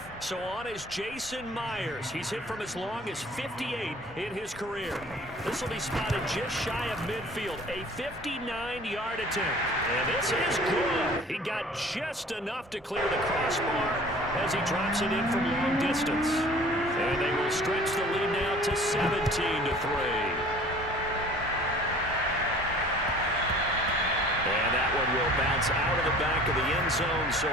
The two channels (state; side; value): normal; both; correlation 0.48